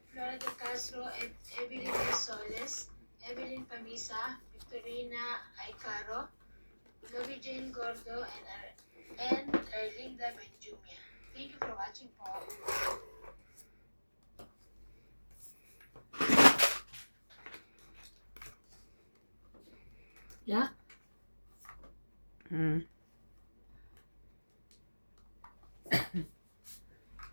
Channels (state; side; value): inverted; both; correlation -1.00